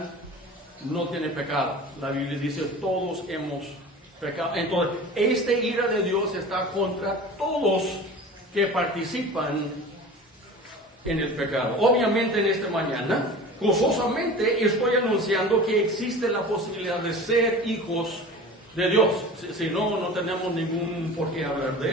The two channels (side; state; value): both; normal; correlation 0.37